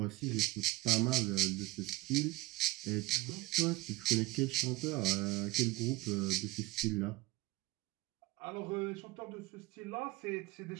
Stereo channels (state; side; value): quieter; left; 19.6 dB